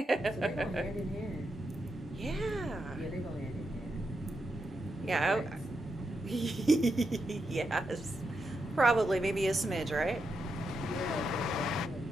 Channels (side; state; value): both; normal; correlation 0.84